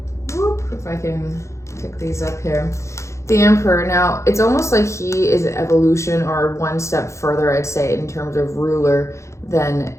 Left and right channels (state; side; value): late; right; 0.14 ms